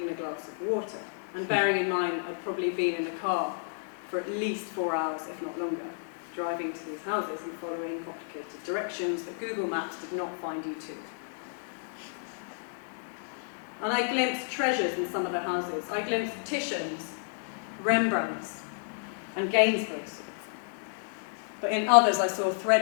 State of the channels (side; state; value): right; silent; digital silence